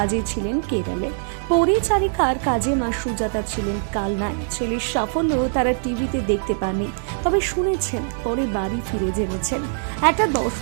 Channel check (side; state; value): left; silent; digital silence